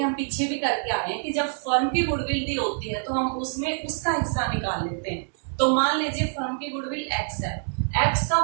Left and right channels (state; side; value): silent; left; digital silence